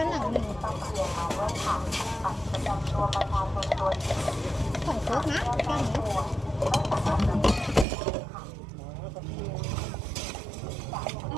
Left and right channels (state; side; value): drops out; left; at 7.9 s